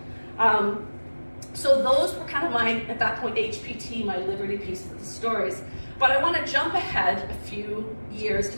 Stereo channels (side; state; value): both; inverted; correlation -1.00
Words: So those were kind of at that point, HPT, my Liberty piece of the stories. But I want to jump ahead a few years to